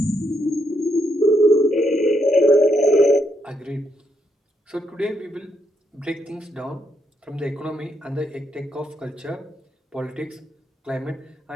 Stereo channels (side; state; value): both; normal; correlation 0.76